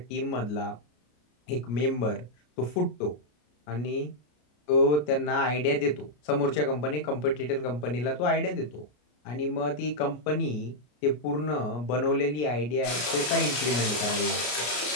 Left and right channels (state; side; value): late; right; 33 ms